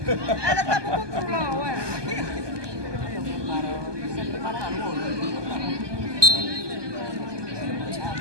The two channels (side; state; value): left; late; 1.2 ms